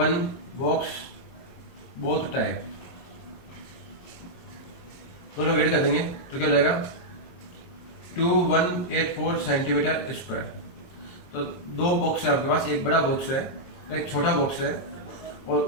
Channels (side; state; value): right; late; 23 ms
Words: box both type, दोनों ऐड कर देंगे तो क्या हो जाएगा 2184 सेंटीमीटर स्क्वायर। तो दो बॉक्स है आपके पास, एक बड़ा बॉक्स है एक छोटा बॉक्स है, और